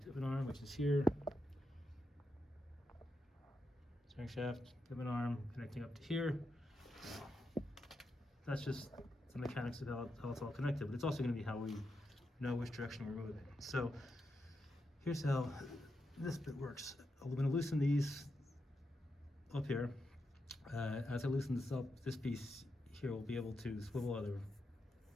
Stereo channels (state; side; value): normal; both; correlation 0.86